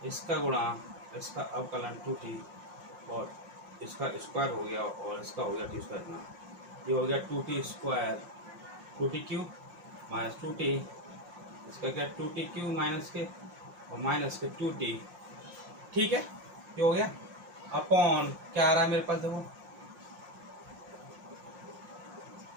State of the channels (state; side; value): late; left; 5.7 ms